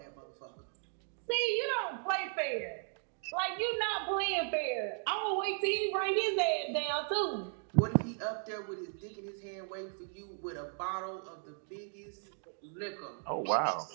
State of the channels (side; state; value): left; silent; 54 dB below the other